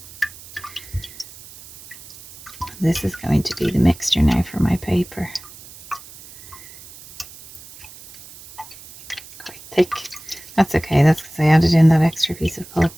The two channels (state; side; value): noise; right; hiss, 19 dB below the sound